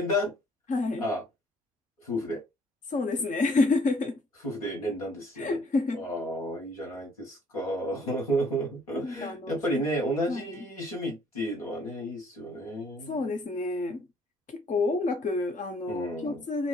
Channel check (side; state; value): both; normal; correlation 0.62